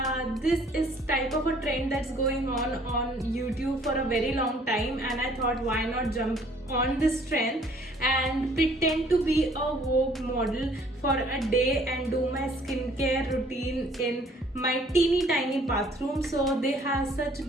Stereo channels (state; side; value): normal; both; correlation 0.58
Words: This is type of a trend that's going on YouTube for a very long time, and I thought why not jump on this trend and pretend to be a Vogue model for a day and do my skincare routine in my teeny tiny bathroom. So they have such